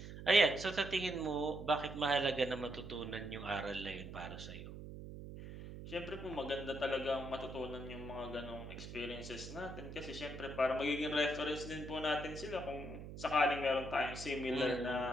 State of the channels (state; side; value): noise; right; hum, 10 dB below the sound